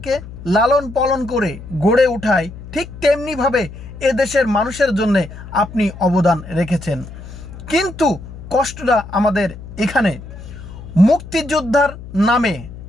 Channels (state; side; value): noise; left; hum, 14 dB below the sound